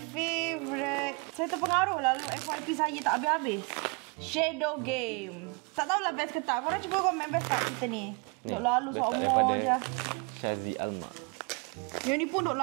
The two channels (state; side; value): quieter; left; 31.2 dB